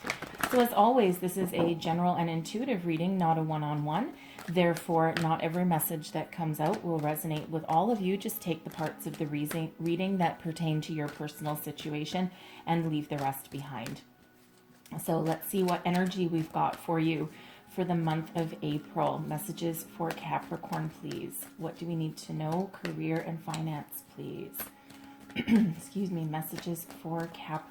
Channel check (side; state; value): both; identical; correlation 1.00